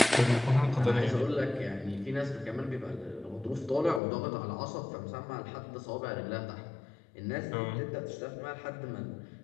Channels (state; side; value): drops out; right; at 4.0 s